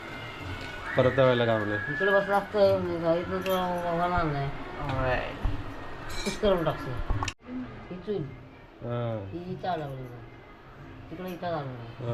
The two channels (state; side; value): identical; both; correlation 1.00